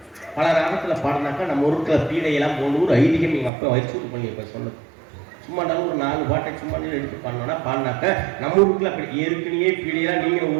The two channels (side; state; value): left; drops out; at 3.5 s